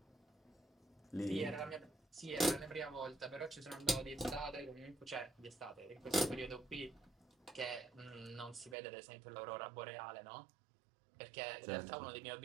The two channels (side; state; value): left; drops out; at 8.8 s